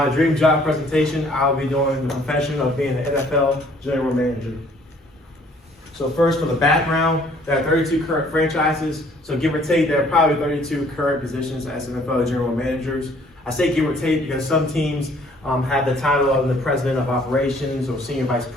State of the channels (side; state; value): both; normal; correlation 0.59